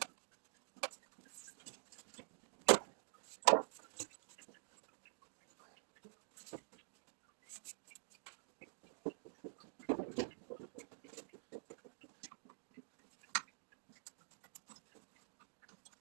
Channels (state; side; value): silent; left; digital silence